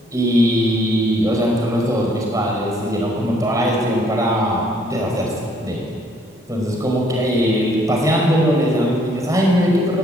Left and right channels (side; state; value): both; normal; correlation 0.65